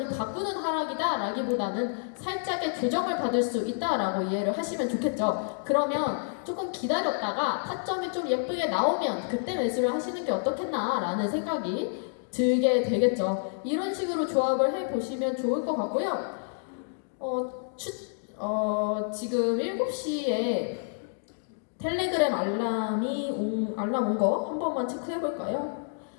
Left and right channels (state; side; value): silent; right; digital silence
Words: 바꾸는 하락이다 라기보다는 살짝의 조정을 받을 수 있다라고 이해를 하시면 좋겠죠. 그러면 조금 기다렸다가 타점이 좀 예쁘게 나오면 그때 매수를 하시는 게 어떻겠나 라는 생각이 들게 되겠죠. 이런 식으로 조합을 해보시면 좋을 것 같고요. 지금 7시에 텔레그램 알람 온 거 한 번만 체크해 볼까요?